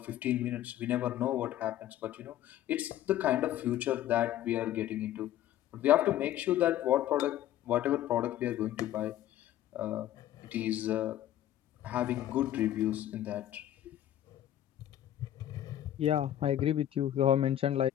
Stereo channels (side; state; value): right; quieter; 12.3 dB